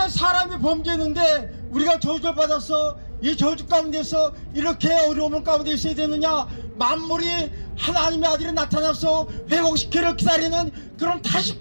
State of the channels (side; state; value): both; inverted; correlation -1.00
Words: 사람이 범죄했는데 우리가 저주를 받아서 이 저주 가운데서 이렇게 어려움 가운데 있어야 되느냐, 만물이 하나님의 아들이 나타나서 회복시키를 기다리는 그런 타식